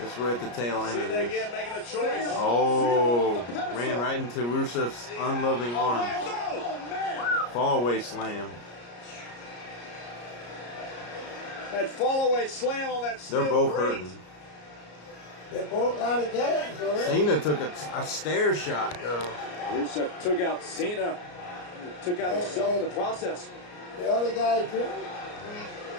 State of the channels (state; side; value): late; right; 34 ms